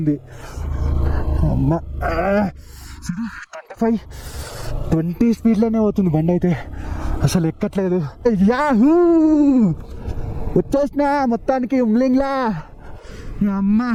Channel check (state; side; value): identical; both; correlation 1.00